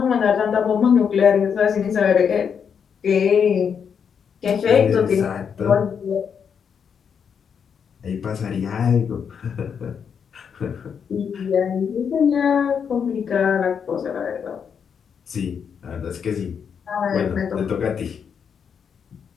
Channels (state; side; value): quieter; right; 7.1 dB